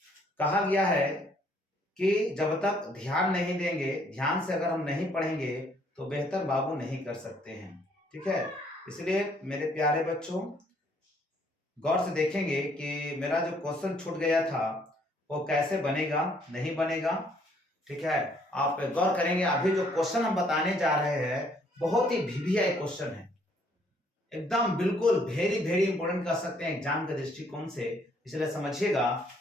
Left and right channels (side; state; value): both; normal; correlation 0.65